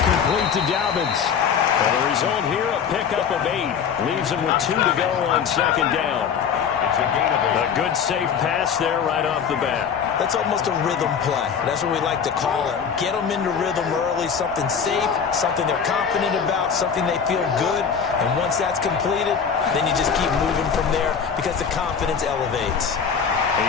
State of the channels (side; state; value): right; quieter; 6.9 dB